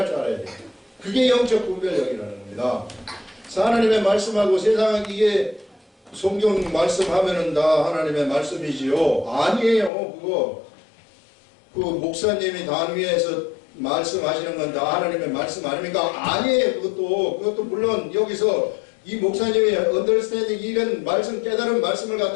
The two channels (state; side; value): drops out; right; at 9.9 s